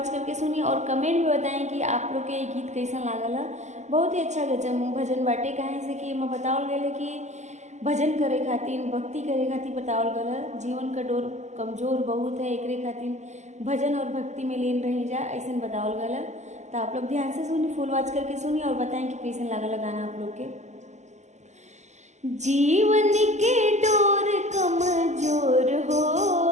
करके सुनी और कमेंट में बताएं कि आप लोग के ये गीत कैसा लागल है। बहुत ही अच्छा गजब भजन बाटे, काहे से कि मैं बतावल गए कि भजन करे खातिर, भक्ति करे खातिर बतावल गल है। जीवन का डोर कमजोर बहुत है, एकरे खातिर भजन और भक्ति में लीन रही जा, ऐसा बतावल गल है। तो आप लोग ध्यान से सुनी, फुल वॉच करके सुनी और बताएं कि कैसे लागल गाना आप लोग के। जीवन के डोर कमजोर हो,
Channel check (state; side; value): late; left; 0.34 ms